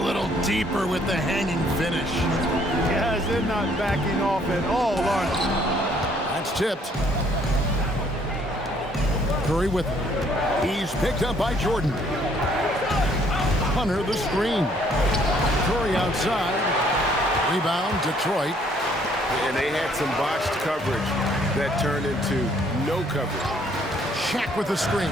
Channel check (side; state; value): both; normal; correlation 0.64